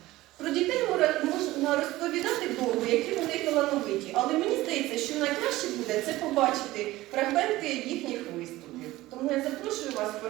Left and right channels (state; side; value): quieter; left; 17.5 dB